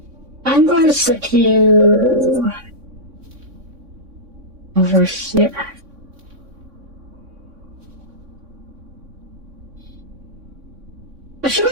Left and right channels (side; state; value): left; late; 3.6 ms